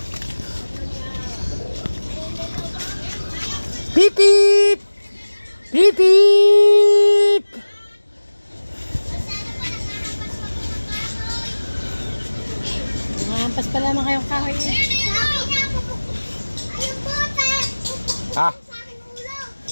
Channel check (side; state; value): both; inverted; correlation -1.00